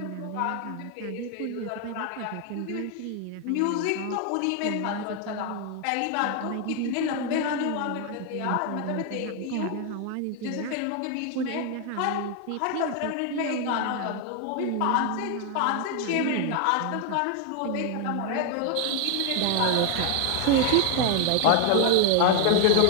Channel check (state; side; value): different; both; correlation 0.01